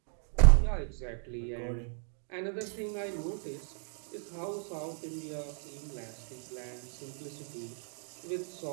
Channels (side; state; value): left; silent; 55 dB below the other